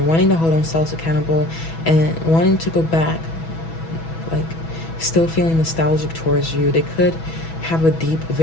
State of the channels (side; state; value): right; late; 6.1 ms